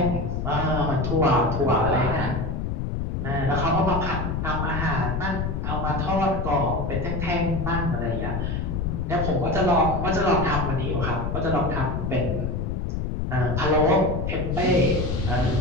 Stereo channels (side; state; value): left; noise; rumble, 2 dB below the sound